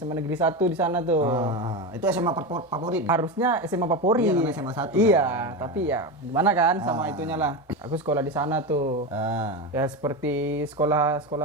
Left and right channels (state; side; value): normal; both; correlation 0.18